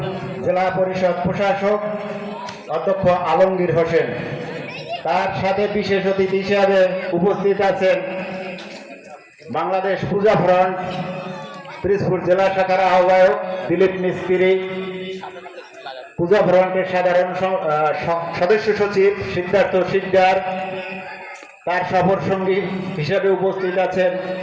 জেলা পরিষদ প্রশাসক অধ্যক্ষ আলমগীর হোসেন। তার সাথে বিশেষ অতিথি হিসাবে উপস্থিত আছেন বাংলাদেশ পূজা ফ্রন্ট পিরোজপুর জেলা শাখার আহ্বায়ক দিলীপ মিস্ত্রি, পূজা ফ্রন্টের সাধারণ সদস্য সচিব সিদ্ধার্থ সিকদার। তার সফর সঙ্গী হিসেবে উপস্থিত আছেন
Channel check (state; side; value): identical; both; correlation 1.00